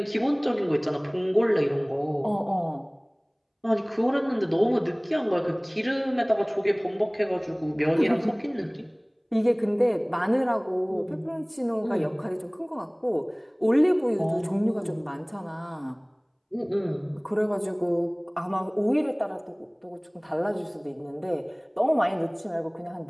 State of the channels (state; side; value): identical; both; correlation 1.00